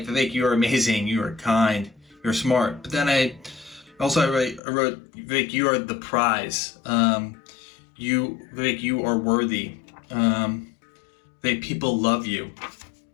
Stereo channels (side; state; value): right; drops out; at 4.6 s